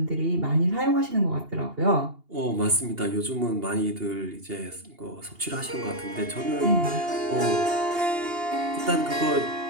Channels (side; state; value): left; late; 2.8 ms